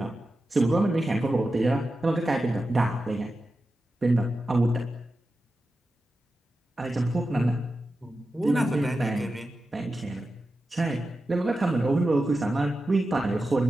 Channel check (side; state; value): both; normal; correlation 0.92